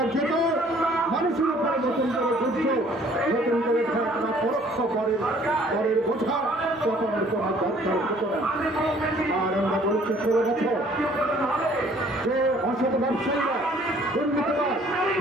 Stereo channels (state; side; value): normal; both; correlation 0.57